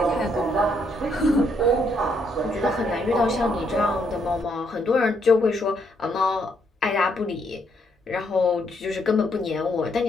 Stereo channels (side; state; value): both; normal; correlation 0.73